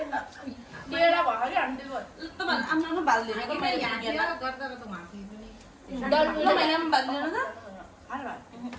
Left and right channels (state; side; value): identical; both; correlation 1.00